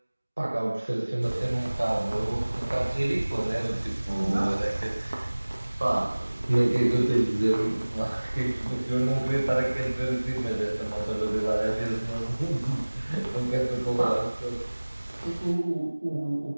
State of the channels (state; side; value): inverted; both; correlation -1.00